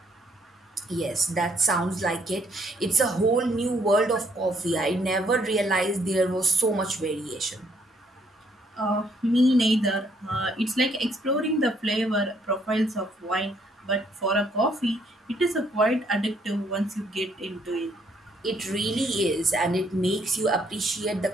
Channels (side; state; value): both; normal; correlation 0.68